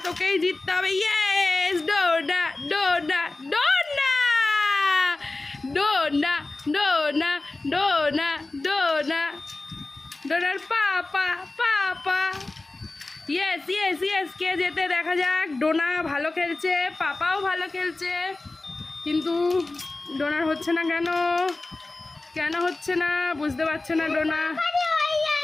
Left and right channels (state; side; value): quieter; right; 3.1 dB